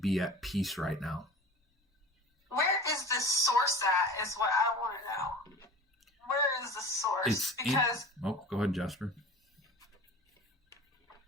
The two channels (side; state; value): both; normal; correlation 0.38